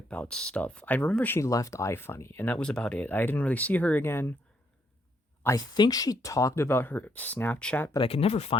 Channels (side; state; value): both; normal; correlation 0.74